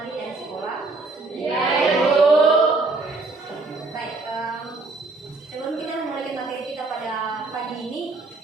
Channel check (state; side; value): quieter; left; 3.4 dB